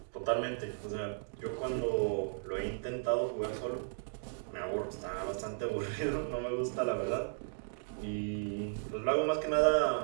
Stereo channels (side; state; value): left; silent; digital silence